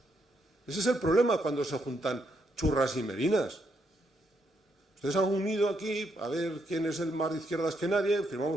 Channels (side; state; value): both; normal; correlation 0.77